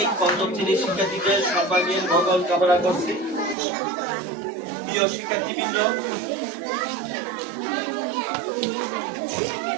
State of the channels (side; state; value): left; drops out; at 3.6 s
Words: পঞ্চম শ্রেণীর শিক্ষার্থীদের সর্বাঙ্গীন মঙ্গল কামনা করছি। প্রিয় শিক্ষার্থীবৃন্দ,